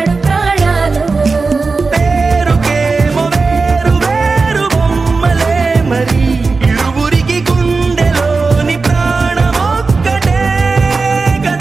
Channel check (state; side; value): quieter; left; 4.1 dB